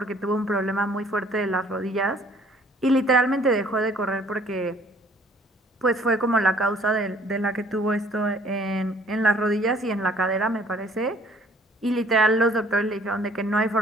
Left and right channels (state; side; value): normal; both; correlation 0.58